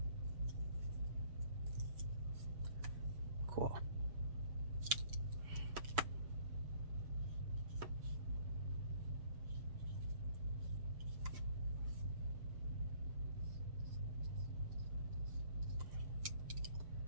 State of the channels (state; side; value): late; left; 7.0 ms